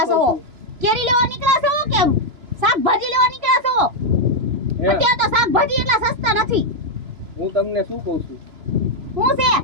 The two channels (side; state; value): left; late; 3.0 ms